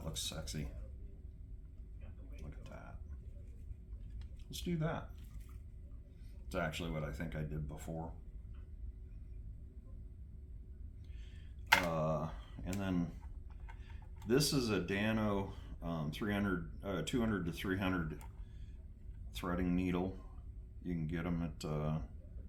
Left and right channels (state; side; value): identical; both; correlation 1.00